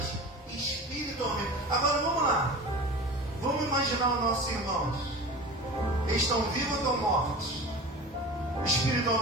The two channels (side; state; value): both; normal; correlation 0.35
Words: espiritualmente. Agora vamos lá. Vamos imaginar os nossos irmãos. Eles estão vivos ou estão mortos?